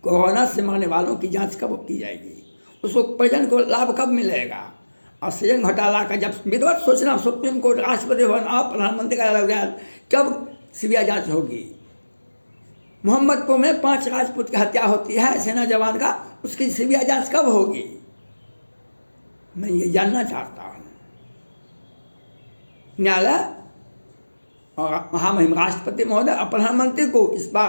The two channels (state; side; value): inverted; both; correlation -1.00